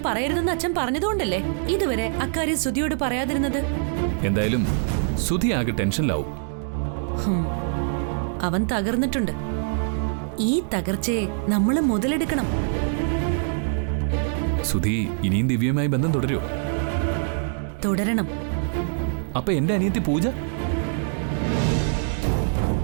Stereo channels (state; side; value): silent; left; digital silence